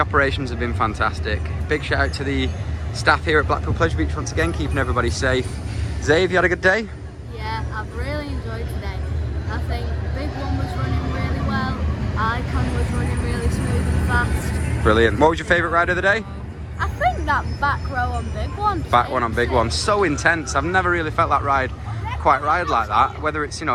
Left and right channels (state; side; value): identical; both; correlation 1.00